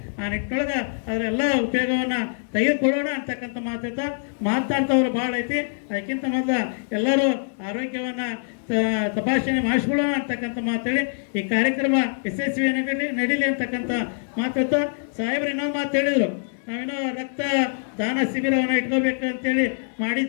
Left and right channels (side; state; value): right; silent; digital silence